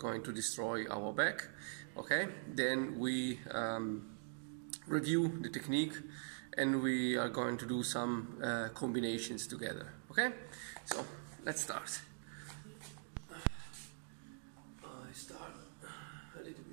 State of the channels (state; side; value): silent; left; digital silence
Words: to destroy our back. Okay, then we review the technique and we are going to do some combinations together. Okay, so let's start. I start a little